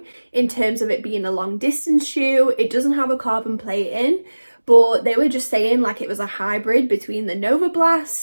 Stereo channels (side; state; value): both; inverted; correlation -1.00